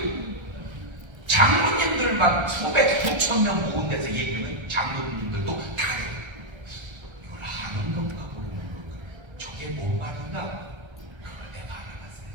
장로님들만 수백 수천 명 모은 데서 얘기하면 장로님들도 다르. 이걸 하는 건가 모르는 건가. 저게 뭔 말인가? 그걸 내가 알아봤어요.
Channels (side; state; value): left; late; 1.3 ms